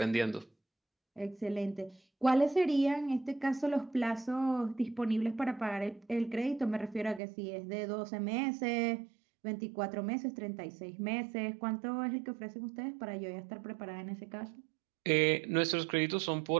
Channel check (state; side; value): drops out; left; at 7.2 s